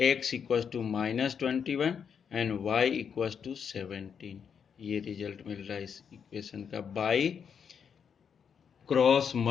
equals to -21 and y equals to 17। ये रिजल्ट मिल रहा है इस इक्वेशन का बाय क्रॉस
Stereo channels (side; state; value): right; quieter; 7.1 dB